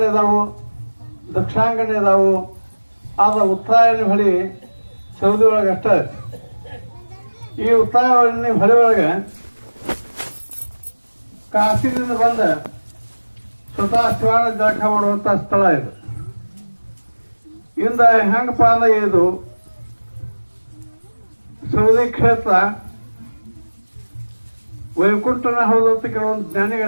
ಇದಾವು, ದಕ್ಷಿಣಾಂಗಣ ಇದಾವು. ಆದ್ರೆ ಉತ್ತರಾಯಣಿ ಹೊಳಿ ಸೌದಿ ಒಳಗೆ ಅಷ್ಟೇ. ಈ ಉತ್ತರಾಯಣಿ ಹೊಳಿ ಒಳಗೆ ಕಾಶಿದಿಂದ ಬಂದ ಸ್ವತಃ ಶಿವಾನ ಜಳಕ ಮಾಡುವಂತ ಸ್ಥಳ ಇದು. ಇಂದ ಹೆಂಗಪ್ಪ ಅಂದ್ರೆ ಇದು ಸೌದಿ ಕ್ಷೇತ್ರ ವೈಕುಂಠನ ಹೌದು ಅಂತ ಕೆಲವೊಂದು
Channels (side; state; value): both; inverted; correlation -1.00